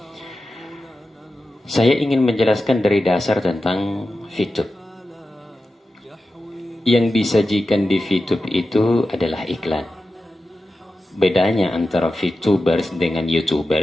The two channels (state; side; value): normal; both; correlation 0.92